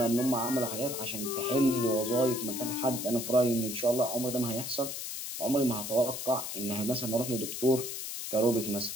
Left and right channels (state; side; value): noise; left; hiss, 6 dB below the sound